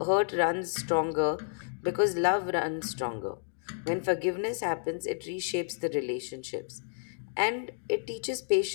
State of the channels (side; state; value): right; silent; 57 dB below the other